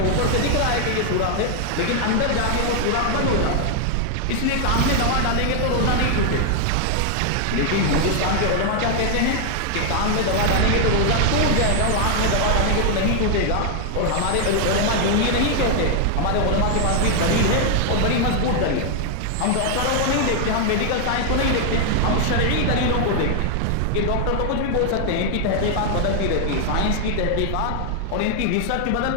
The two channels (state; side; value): different; both; correlation 0.00